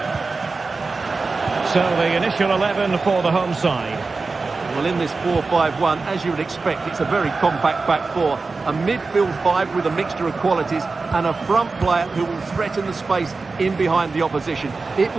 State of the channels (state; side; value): quieter; left; 4.0 dB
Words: So the initial 11 for the home side. Well, in this 4-5-1, as you would expect, it's a very compact back four. A midfield five with a mixture of qualities and a front player who will threaten the space in behind the opposition. It